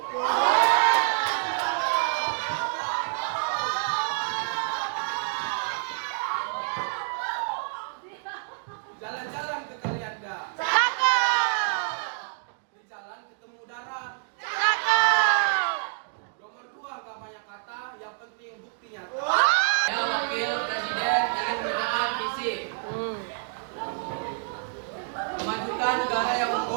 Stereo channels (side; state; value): left; silent; digital silence